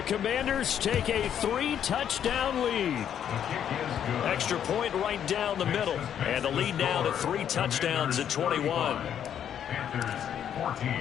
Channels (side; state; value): right; quieter; 9.3 dB